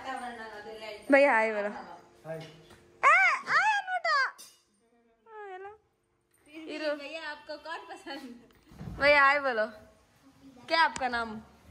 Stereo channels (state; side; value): identical; both; correlation 1.00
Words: ಭಯ್ಯ ಆಯ್ ಬರೋ भैया आए बोलो क्या आपका नाम